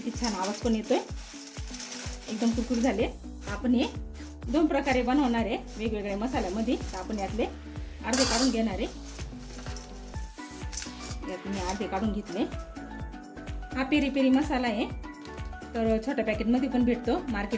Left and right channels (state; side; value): identical; both; correlation 1.00